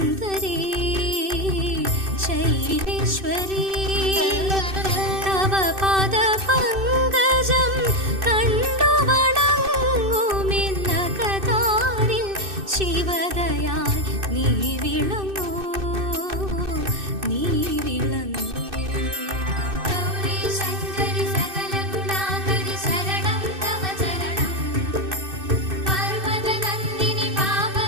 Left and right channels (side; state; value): left; late; 2.6 ms